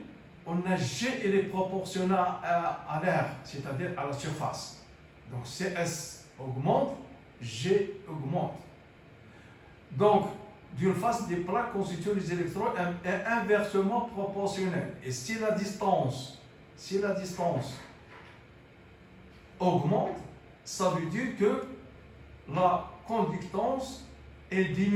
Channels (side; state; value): both; identical; correlation 1.00